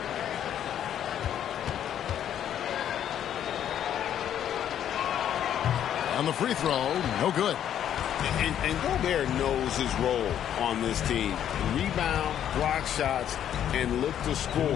On the free throw, no good. And Gobert knows his role on this team. Rebound, block shots, and look to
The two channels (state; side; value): quieter; right; 10.1 dB